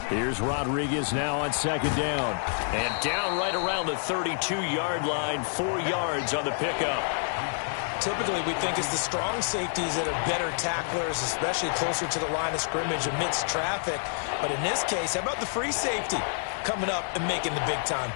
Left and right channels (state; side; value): silent; right; digital silence